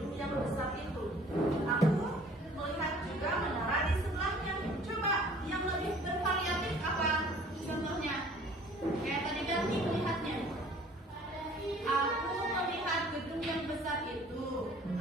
yang besar itu, aku melihat juga menara di sebelahnya. Coba yang lebih bervariatif apa contohnya? Kayak tadi ganti melihatnya. Aku melihat gedung yang besar itu,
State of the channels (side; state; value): both; normal; correlation 0.52